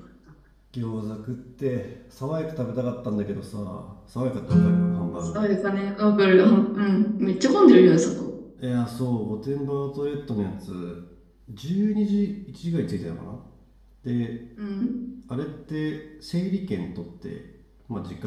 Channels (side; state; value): both; identical; correlation 1.00